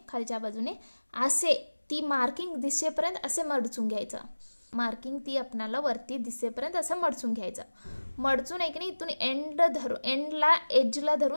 असे ती मार्किंग दिसेपर्यंत असे मडचून घ्यायचं. मार्किंग ती आपणाला वरती दिसेपर्यंत असं मडचून घ्यायचं. मडचून आहे की नाही इथून एंडला एजला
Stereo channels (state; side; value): inverted; both; correlation -1.00